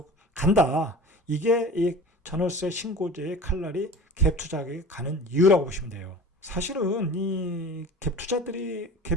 간다. 이게 이 전월세 신고제의 칼날이 갭 투자에 가는 이유라고 보시면 돼요. 사실은 이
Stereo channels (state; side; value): normal; both; correlation 0.38